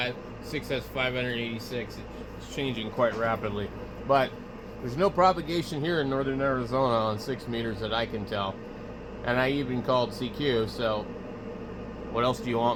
6 has 586. It's changing quite rapidly. But there's no propagation here in northern Arizona on 6 meters that I can tell. And I even called CQ, so what else do you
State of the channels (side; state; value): both; identical; correlation 1.00